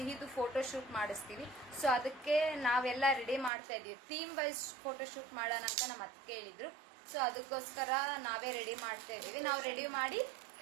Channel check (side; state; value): left; drops out; at 3.5 s